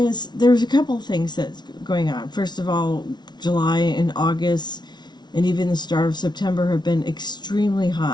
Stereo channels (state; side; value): late; right; 0.20 ms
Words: there's a couple of things that's going on. First of all, July and August and even the start of September have been extremely